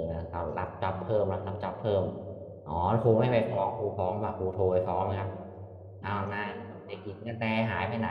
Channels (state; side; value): identical; both; correlation 1.00